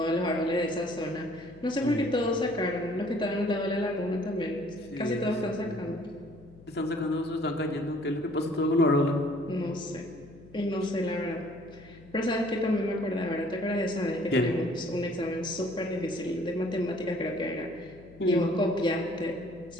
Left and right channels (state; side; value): noise; left; hum, 22 dB below the sound